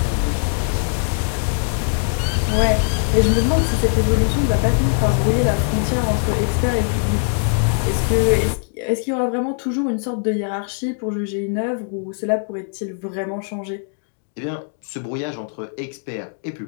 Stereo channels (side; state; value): right; silent; 65 dB below the other